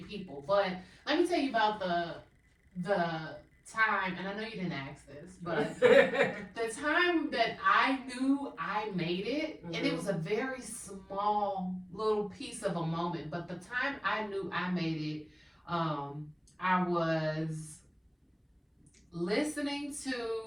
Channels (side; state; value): both; identical; correlation 1.00